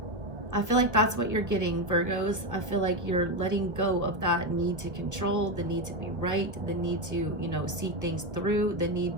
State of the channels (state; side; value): late; left; 1.2 ms